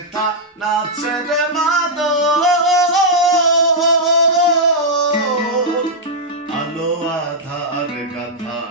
নাচে রে মাদল। আলো আধার গাথা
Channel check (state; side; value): normal; both; correlation -0.06